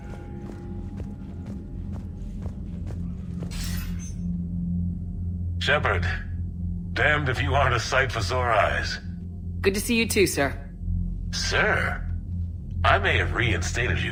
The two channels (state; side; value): identical; both; correlation 1.00